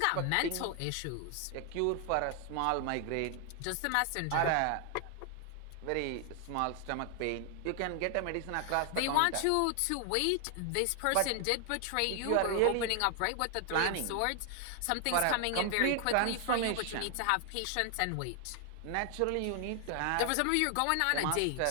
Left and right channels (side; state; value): both; different; correlation 0.00